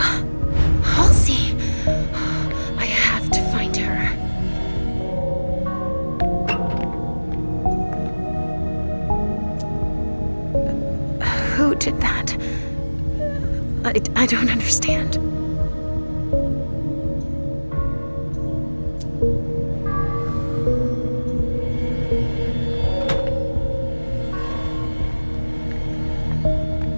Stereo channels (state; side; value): inverted; both; correlation -1.00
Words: Halsey! I have to find her. Who did that? I don't understand.